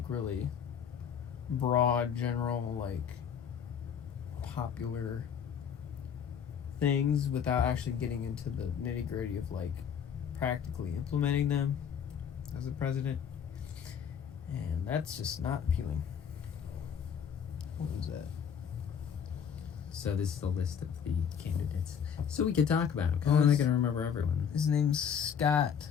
really broad, general, like popular things without actually getting into the nitty gritty of like practically implementing them as a president, and that's just not appealing. What was that? So this is the list of the candidates. So we could talk about them, because I'm not going to remember everyone. His name's Scott.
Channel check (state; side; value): quieter; right; 7.7 dB